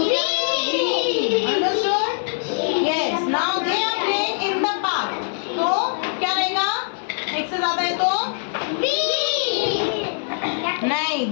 understood? Yes. Now they are playing in the park, तो क्या रहेगा? एक से ज्यादा है तो नहीं,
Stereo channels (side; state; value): right; silent; 58 dB below the other